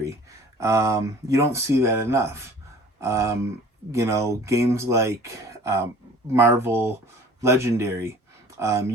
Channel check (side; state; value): both; normal; correlation 0.48